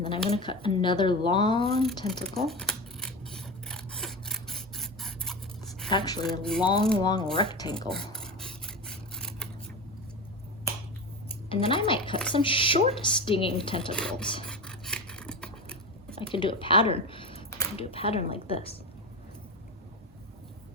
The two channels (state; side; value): normal; both; correlation 0.23